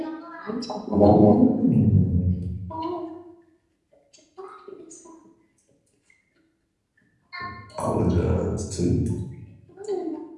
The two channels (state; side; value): identical; both; correlation 1.00